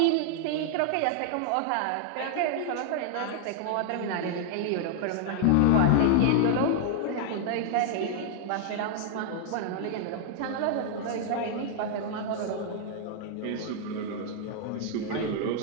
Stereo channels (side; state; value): both; different; correlation -0.01